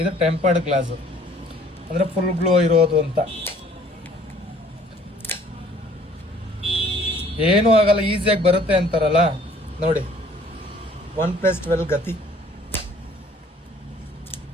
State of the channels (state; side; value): normal; both; correlation 0.56